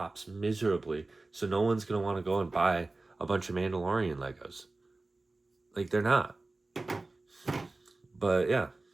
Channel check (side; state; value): left; quieter; 3.2 dB